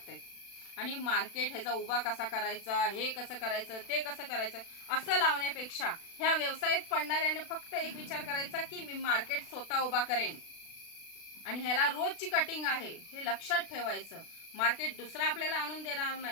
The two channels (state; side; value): late; right; 36 ms